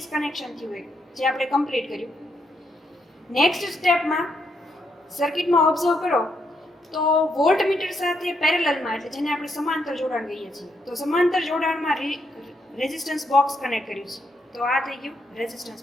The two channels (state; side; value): normal; both; correlation 0.78